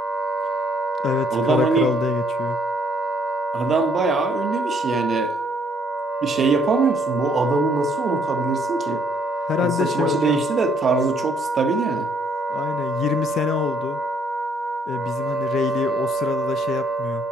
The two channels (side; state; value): both; normal; correlation 0.67